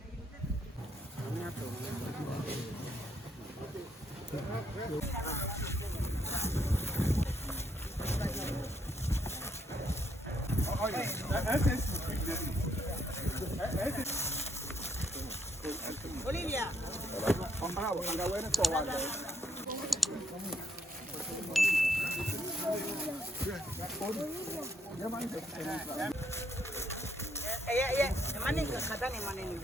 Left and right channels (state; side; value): normal; both; correlation 0.73